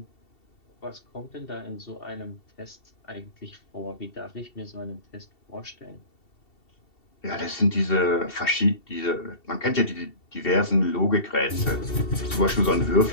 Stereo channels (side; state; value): right; late; 2.7 ms